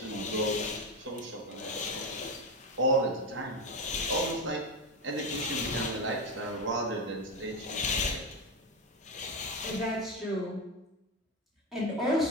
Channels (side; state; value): both; normal; correlation 0.14